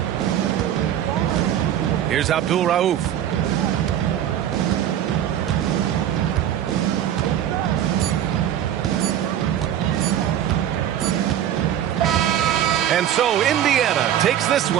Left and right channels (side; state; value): left; quieter; 10.7 dB